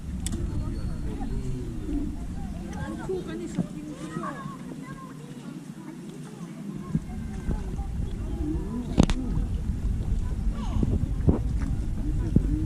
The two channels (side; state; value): both; identical; correlation 1.00